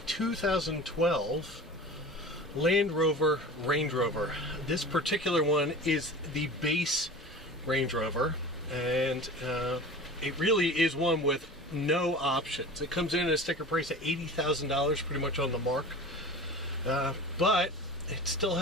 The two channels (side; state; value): both; normal; correlation 0.36